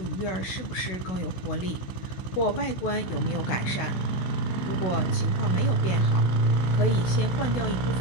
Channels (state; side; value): late; right; 16 ms